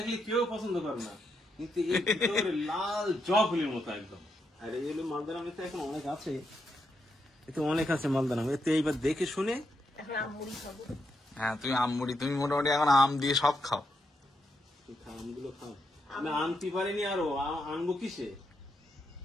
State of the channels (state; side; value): normal; both; correlation 0.81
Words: কেউ পছন্দ করে না, কিন্তু এর ভিতরে লাল জবা ফুলের মতো একদম। আর এই হলো মালদার আম। এতে এখন অনেক আছে, এতে অনেক আছে মালদার আম। এতে এইবার দেখে শুনে এখন আমুড়ি খাবো। হ্যাঁ তুমি আমুড়ি, তুমি মোটামুটি এখন আম দিয়ে সব খাও। আমগুলো খাও। আমি আনতে পারিনি, আরো আনবো কিসে?